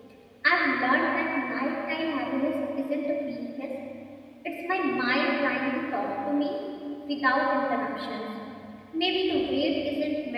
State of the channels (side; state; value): both; identical; correlation 1.00